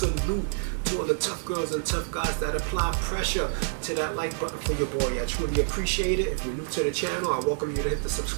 to all the tough girls and tough guys that apply pressure to that like button for your boy. I truly appreciate it. If you're new to the channel, I welcome you to hit the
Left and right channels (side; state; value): left; silent; digital silence